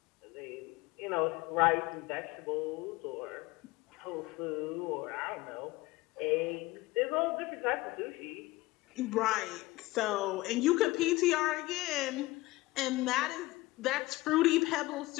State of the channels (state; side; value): quieter; right; 19.8 dB